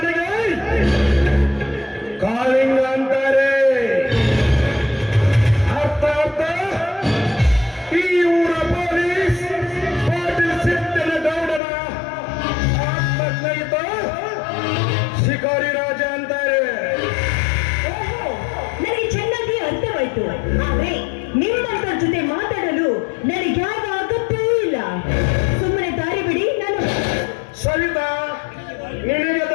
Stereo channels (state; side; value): drops out; right; at 11.6 s